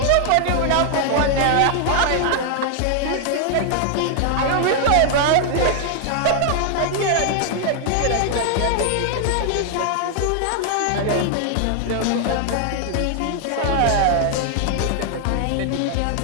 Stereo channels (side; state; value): both; different; correlation 0.00